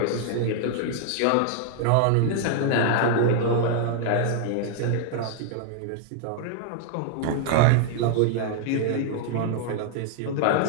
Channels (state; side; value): different; both; correlation 0.00